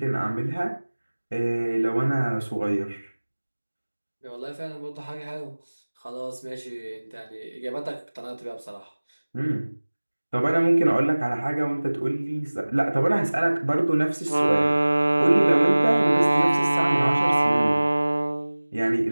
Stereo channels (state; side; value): inverted; both; correlation -1.00